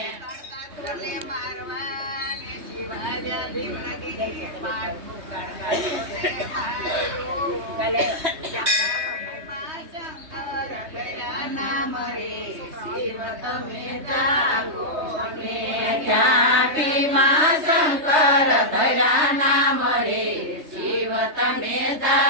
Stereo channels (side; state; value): left; late; 3.2 ms